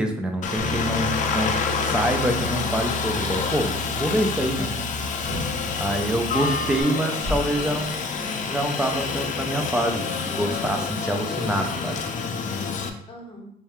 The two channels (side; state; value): both; normal; correlation 0.50